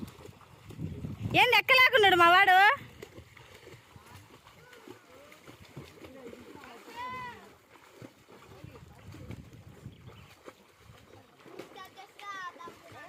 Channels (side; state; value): both; identical; correlation 1.00